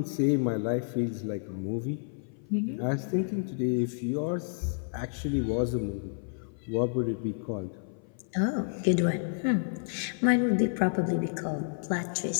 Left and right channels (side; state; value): right; silent; 55 dB below the other